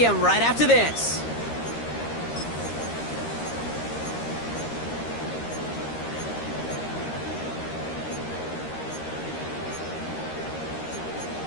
right after this.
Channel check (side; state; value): right; late; 13 ms